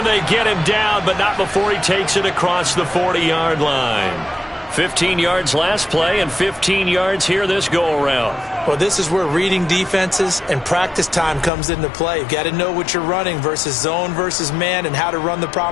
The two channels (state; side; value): drops out; right; at 11.5 s